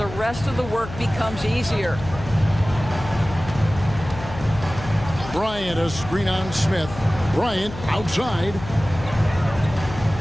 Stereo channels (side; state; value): left; noise; hum, 12 dB below the sound